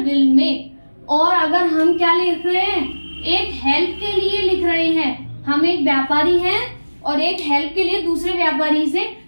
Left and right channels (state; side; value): inverted; both; correlation -1.00